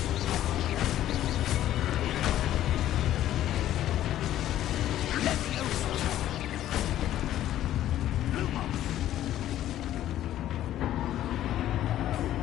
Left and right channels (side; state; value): right; quieter; 12.7 dB